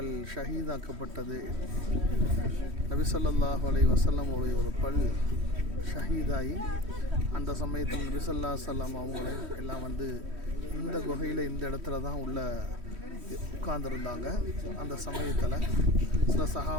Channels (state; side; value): late; left; 3.1 ms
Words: ஷஹீதாக்கப்பட்டது. நபி ஸல்லல்லாஹு அலைஹி வஸல்லம் ஒரு பல் ஷஹீதாகி அந்த சமயத்தில் நபி ஸல்லல்லாஹு அலைஹி வஸல்லம் அவங்களே எல்லாம் வந்து இந்த குகையில் இந்த இடத்துல தான் உள்ள உட்கார்ந்துருந்தாங்க. அந்த சமயத்தில் சில